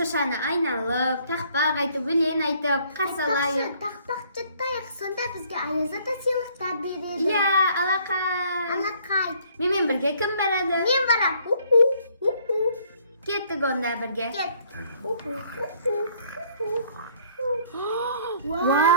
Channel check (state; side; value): inverted; both; correlation -0.61